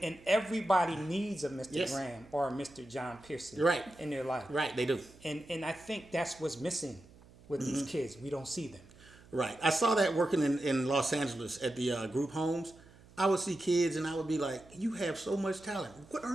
And everybody needs a Mr. Yes. Graham or a Mr. John Pearson Right. in their life. Right, they do. And I think that's what's missing with these kids. We don't see them. Right. I saw that working in Los Angeles at the group homes. I would see kids and I would be like, you have so much talent. What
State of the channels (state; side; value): noise; right; hum, 24 dB below the sound